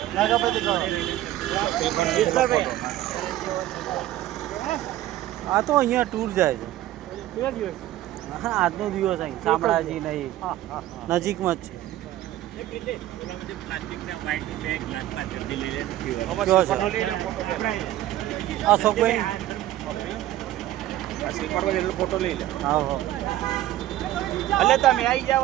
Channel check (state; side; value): quieter; left; 14.2 dB